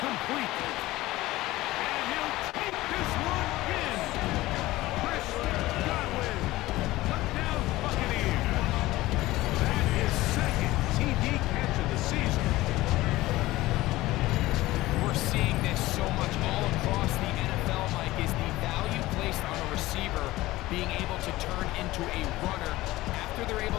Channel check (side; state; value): right; quieter; 17.8 dB